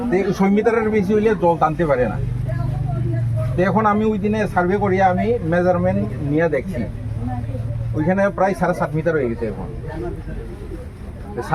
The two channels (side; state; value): both; identical; correlation 1.00